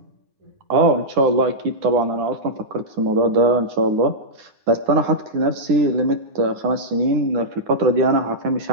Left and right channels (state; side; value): late; left; 9.7 ms